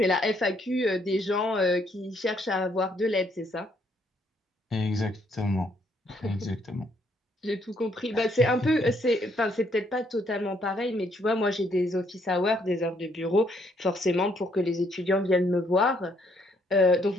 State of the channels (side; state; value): both; normal; correlation 0.70